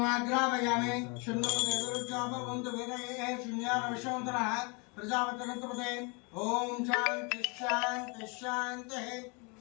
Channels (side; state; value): right; quieter; 32.0 dB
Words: శున్నో దేవరుద్రాభవంతు వేదయే శూన్యాన విశ్వంతరః ప్రజాపతిరంతపదే ఓం శాంతి శాంతి శాంతి